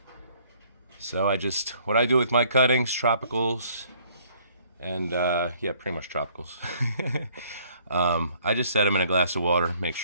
So what I do with my cuttings, tropicals, and yeah, pretty much tropicals. I just set them in a glass of water, make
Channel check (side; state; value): both; inverted; correlation -0.61